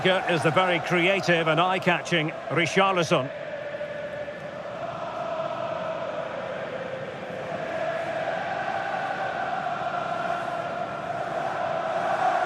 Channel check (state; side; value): identical; both; correlation 1.00